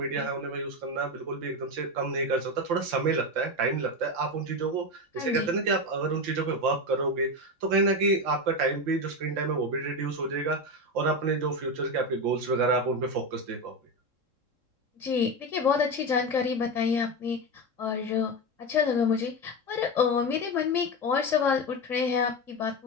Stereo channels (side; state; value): left; late; 3.7 ms